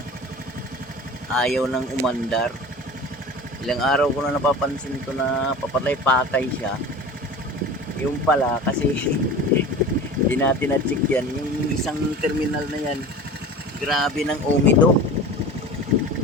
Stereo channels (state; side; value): normal; both; correlation 0.36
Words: ayaw nang umandar. Ilang araw ko na napapansin to na papatay-patay siya. Yung pala kasi hindi natin na-check yan. Yung isang terminal na yan, grabe ng umido.